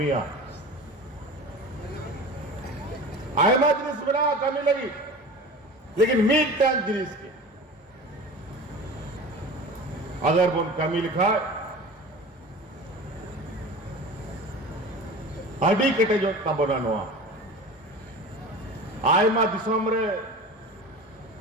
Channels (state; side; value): normal; both; correlation 0.35